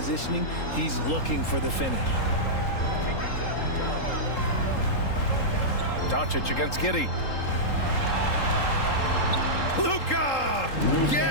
he's looking for the finish. Doncic against Giddey. Luka!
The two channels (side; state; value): right; late; 3.8 ms